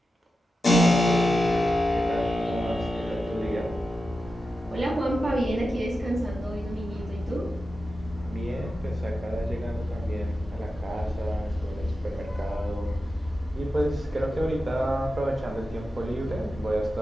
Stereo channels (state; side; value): normal; both; correlation 0.91